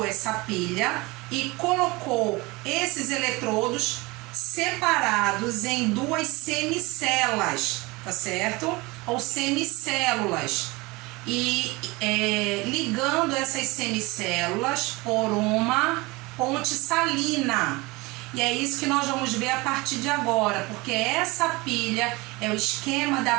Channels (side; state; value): left; quieter; 23.6 dB